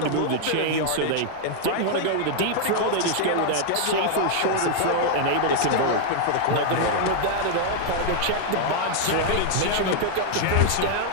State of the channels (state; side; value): different; both; correlation 0.00